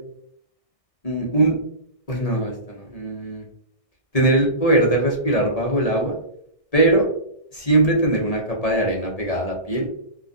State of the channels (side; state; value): right; late; 1.8 ms